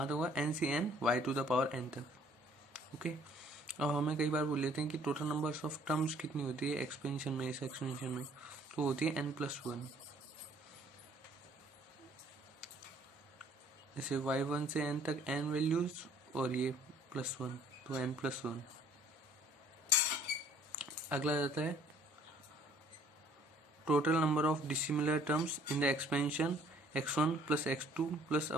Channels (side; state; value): both; normal; correlation 0.58